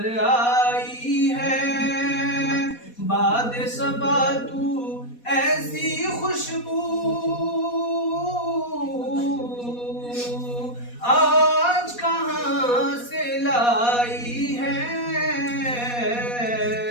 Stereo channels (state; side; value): late; right; 4.2 ms